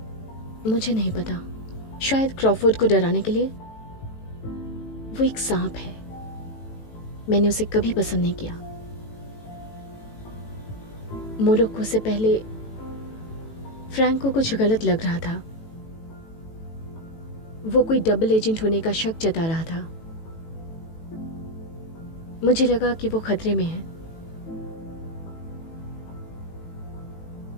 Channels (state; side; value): late; right; 18 ms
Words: मुझे नहीं पता। शायद क्रॉफोर्ड को डराने के लिए। वो एक सांप है। मैंने उसे कभी पसंद नहीं किया। मोरक्को से पहले फ्रैंक को कुछ गलत लग रहा था। वो कोई डबल एजेंट होने का शक जता रहा था। मुझे लगा कि वो खतरे में है।